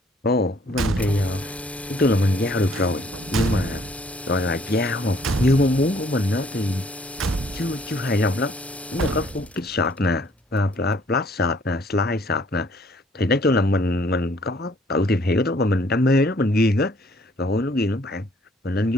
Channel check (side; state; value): both; normal; correlation 0.62